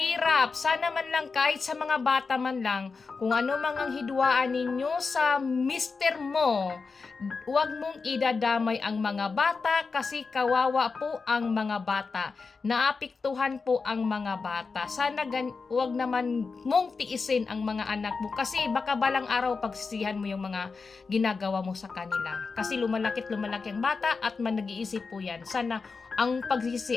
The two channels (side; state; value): right; quieter; 4.6 dB